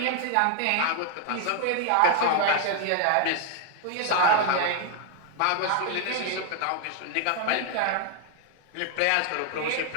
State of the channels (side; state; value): both; different; correlation 0.00